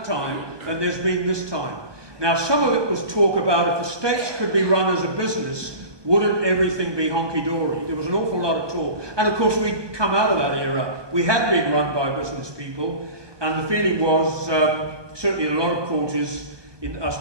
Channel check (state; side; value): late; left; 1.2 ms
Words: time than there's been this time. Now, some of it was talk about if the States could be run as a business, wouldn't everything be honky-dory? There was an awful lot of talk. And of course, we'd come out of that era. We had been run by business people, and the feeling was, certainly in a lot of quarters, in I